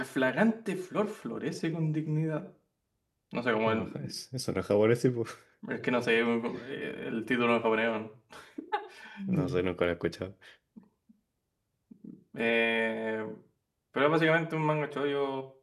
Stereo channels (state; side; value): identical; both; correlation 1.00